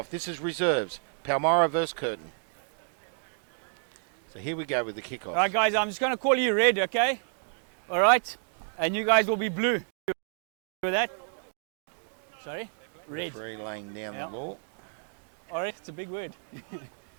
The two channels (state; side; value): silent; left; 58 dB below the other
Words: This is reserves. Palmyra versus Curtin. So here we go with the kickoff. All right, guys, I'm just going to call you red, okay? All right? And you guys will be blue. With that? Sorry? Red. Referee laying down the law. All right, it's a big word.